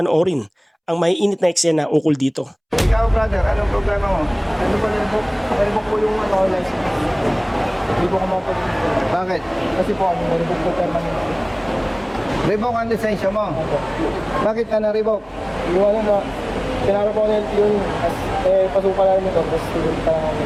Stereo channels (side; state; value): both; identical; correlation 1.00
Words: ang maiinit na eksena ukol dito. Ikaw, brother, anong problema mo? Ano po nila po? Naribok po yung license. Hindi po ako mapag... Bakit? Kasi po ano, naribok po permanent. Revoke ang lisensya mo. Opo. Bakit ka na-revoke? Iwan na, pinara po ako ng LTO yun. Pasuka lang ito, tapos student pa lang ako.